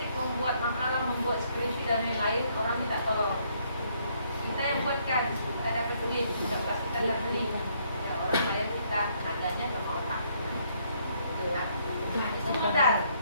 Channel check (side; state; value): both; inverted; correlation -0.69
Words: membuat makalah, membuat skripsi dan lain-lain, orang minta tolong. Kita yang buatkan, kita dapat duit, kita dapat beli. Ya, orang bayar kita, nadanya sama otak. Nah, itu modal.